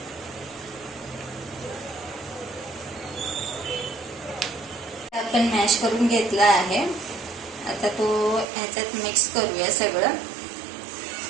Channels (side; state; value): left; drops out; at 8.5 s